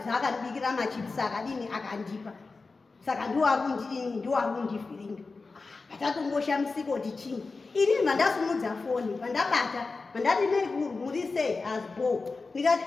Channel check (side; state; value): right; quieter; 4.0 dB